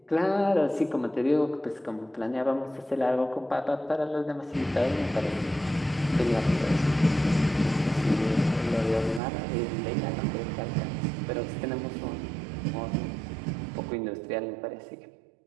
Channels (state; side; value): drops out; left; at 9.2 s